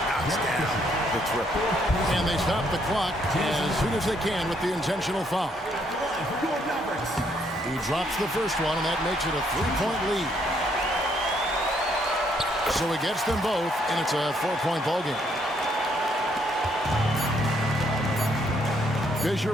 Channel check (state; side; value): normal; both; correlation 0.70